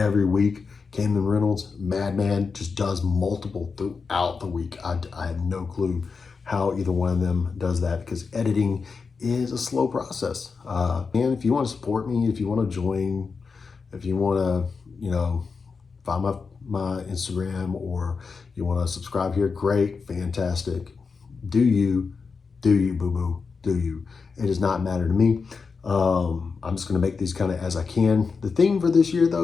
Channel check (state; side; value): quieter; right; 5.0 dB